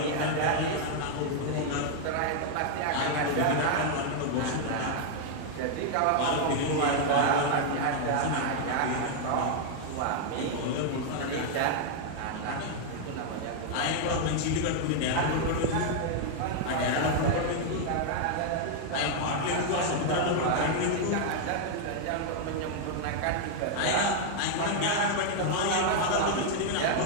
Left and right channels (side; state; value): both; different; correlation 0.00